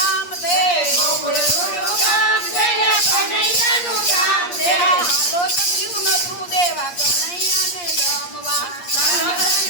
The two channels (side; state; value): right; late; 8.5 ms